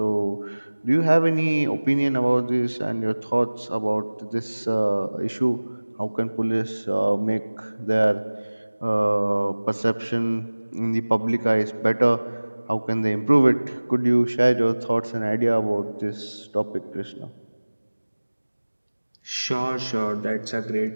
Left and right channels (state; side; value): inverted; both; correlation -1.00